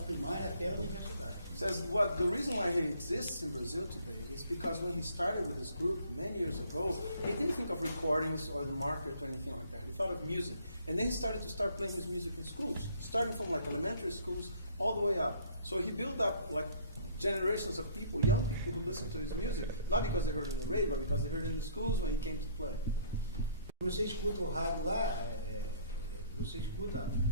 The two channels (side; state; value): both; inverted; correlation -0.59